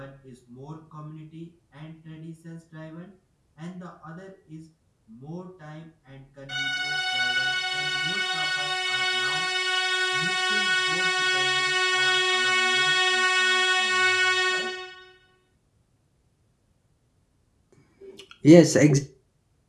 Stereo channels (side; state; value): both; identical; correlation 1.00